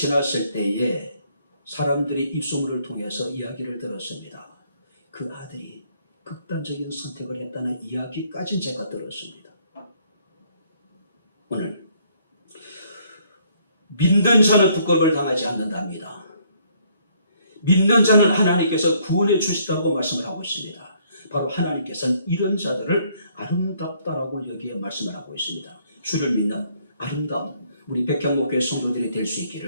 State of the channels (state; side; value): inverted; both; correlation -0.66